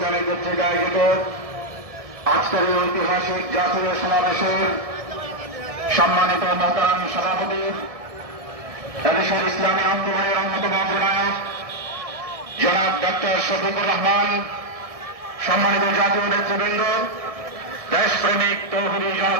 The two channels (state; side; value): late; left; 1.6 ms